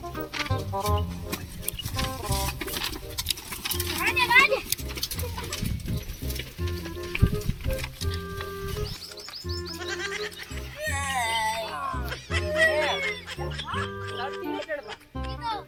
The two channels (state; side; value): identical; both; correlation 1.00